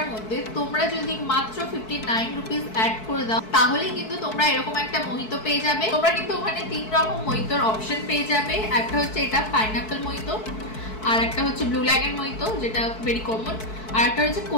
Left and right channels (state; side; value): late; right; 4.6 ms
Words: মধ্যে তোমরা যদি মাত্র 59 রুপিস অ্যাড করে দাও তাহলে কিন্তু তোমরা এরকম একটা মোহিতো পেয়ে যাবে। তোমরা কিন্তু ওখানে 3 রকম মোহিতোর অপশন পেয়ে যাবে। একটা হচ্ছে এটা পাইনাপল মোহিতো, আর একটা হচ্ছে ব্লু ল্যাগন মোহিতো যেটা ভেরি কমন, আর একটা হচ্ছে